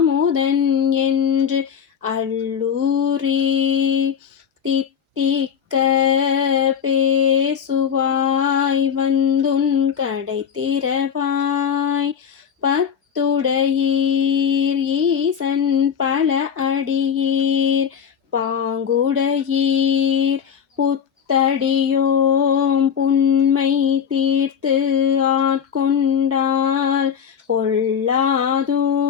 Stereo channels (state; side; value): quieter; right; 7.7 dB